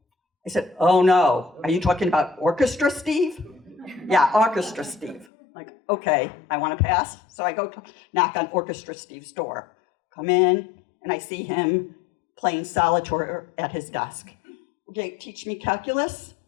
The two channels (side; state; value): right; drops out; at 5.2 s